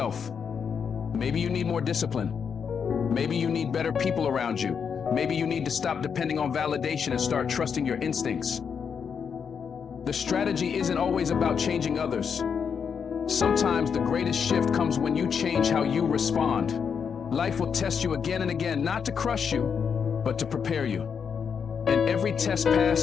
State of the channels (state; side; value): quieter; right; 6.7 dB